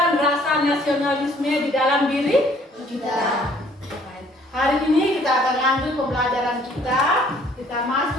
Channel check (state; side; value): normal; both; correlation 0.59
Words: rasa nasionalisme di dalam diri kita. Hari ini kita akan lanjut pembelajaran kita. Kita